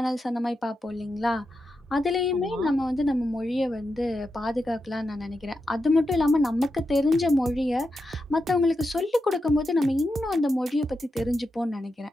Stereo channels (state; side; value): normal; both; correlation 0.87